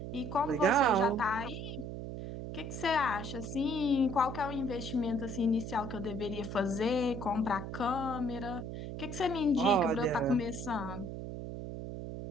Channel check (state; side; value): noise; right; hum, 7 dB below the sound